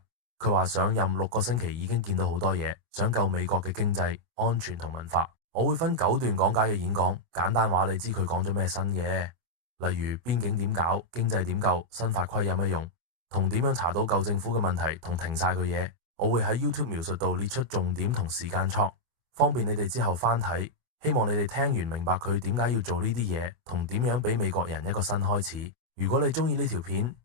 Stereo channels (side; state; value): left; late; 24 ms